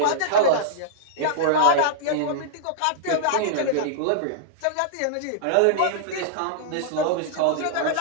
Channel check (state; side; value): different; both; correlation -0.02